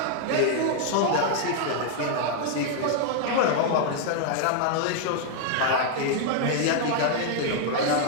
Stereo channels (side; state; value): both; different; correlation 0.00